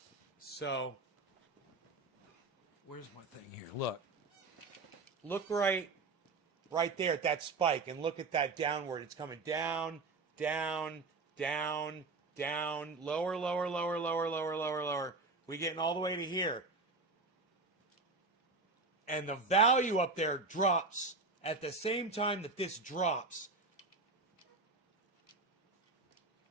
So, where's my thing here? Look. Look right there at that spike, and look at that downward. It's coming down, down, down, down, lower, lower, lower, lower, lower, lower, lower. We're getting all the way to here. And the value up there drops at the same time that this drops.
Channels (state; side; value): quieter; left; 3.7 dB